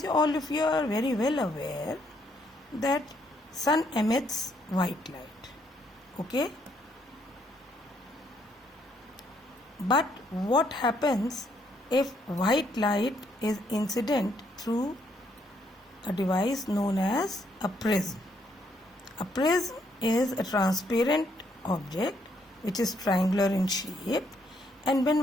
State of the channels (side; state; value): both; normal; correlation 0.72